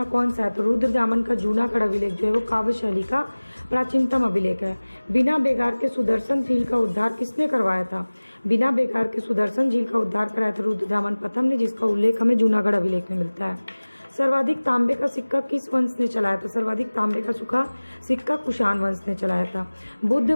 कौन सा है? तो रुद्रदामन का जूनागढ़ अभिलेख जो है वो काव्य शैली का प्राचीनतम अभिलेख है। बिना बेगार के सुदर्शन झील का उद्धार किसने करवाया था? बिना बेगार के सुदर्शन झील का उद्धार कराया था रुद्रदामन प्रथम ने, जिसका उल्लेख हमें जूनागढ़ अभिलेख में मिलता है। सर्वाधिक तांबे का सिक्का किस वंश ने चलाया था? सर्वाधिक तांबे का सिक्का कुषाण वंश ने चलाया था। बुद्ध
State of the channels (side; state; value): both; inverted; correlation -1.00